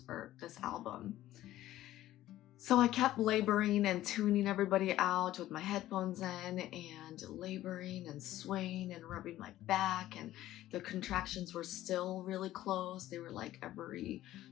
or this album. So I kept laboring and tuning everybody out with my headphones in and laboring and swaying and rubbing my back, and the contractions were still really close. They were like every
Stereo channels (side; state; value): right; quieter; 14.4 dB